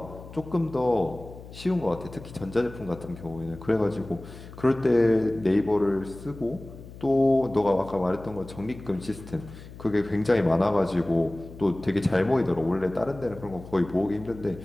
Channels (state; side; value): noise; left; hum, 16 dB below the sound